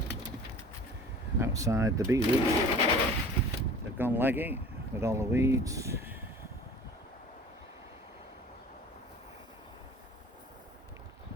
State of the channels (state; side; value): normal; both; correlation 0.44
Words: Outside the beetroot, they've gone leggy. with all the weeds.